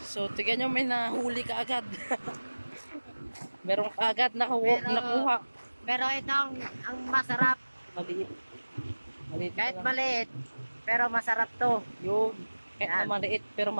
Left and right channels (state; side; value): inverted; both; correlation -1.00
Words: So, tignan nyo, may nahuli ka agad. Meron ka agad nakuha. Pero ito ang masarap. Maliit. Maliit Kahit pa lang. maliit, pero masarap to. Yun. Kahit Yan. na maliit, pero